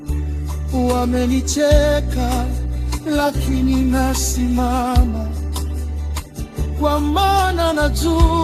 wamenicheka lakini nasimama, kwa maana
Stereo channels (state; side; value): identical; both; correlation 1.00